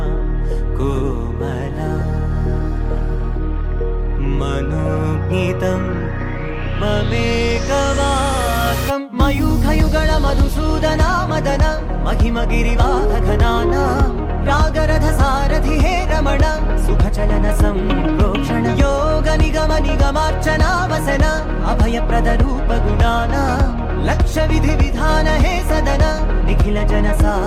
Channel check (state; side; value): identical; both; correlation 1.00